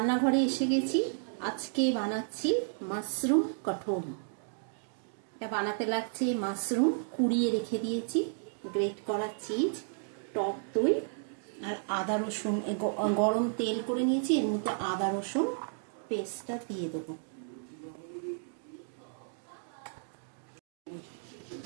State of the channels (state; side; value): silent; left; digital silence